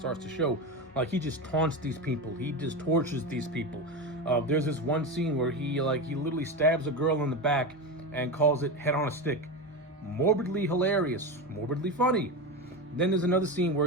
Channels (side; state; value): both; normal; correlation 0.20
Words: to show. He just taunts these people. He just tortures these people. There's this one scene where he literally stabs a girl in the back and calls it head on a stick. Morbidly hilarious, morbidly funny. Then there's another scene